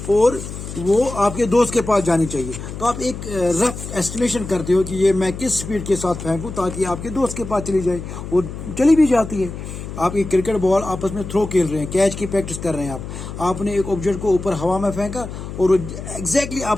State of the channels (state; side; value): noise; left; hum, 9 dB below the sound